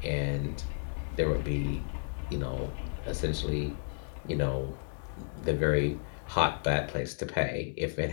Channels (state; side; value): silent; right; 56 dB below the other